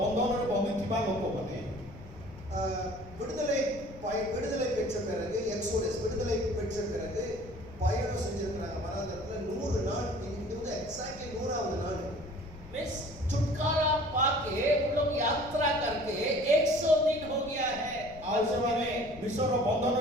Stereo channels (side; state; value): left; noise; rumble, 17 dB below the sound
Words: ବନ୍ଦିଥିବା ଲୋକମାନେ விடுதலை பெற்ற பிறகு எக்ஸோடஸ் விடுதலை பெற்ற பிறகு பயணம் செஞ்சிருக்கிறாங்க வனாந்தரத்துல 100 நாள். இது வந்து எக்ஸாக்ட்லி 100வது நாள். मिस छुटकारा पाके उन लोग यात्रा करके 100 दिन हो गया है। ଆଉ ସେମାନେ ବିଶ୍ୱର